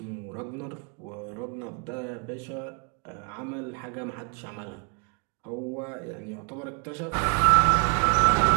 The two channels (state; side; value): quieter; left; 36.8 dB